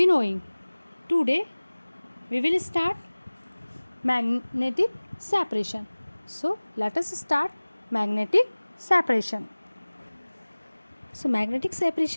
Today we will start magnetic separation. So let us start magnetic separation. So magnetic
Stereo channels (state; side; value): inverted; both; correlation -1.00